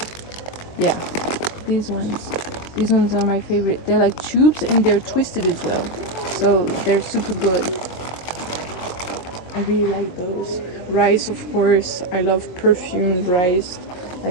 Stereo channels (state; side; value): late; right; 22 ms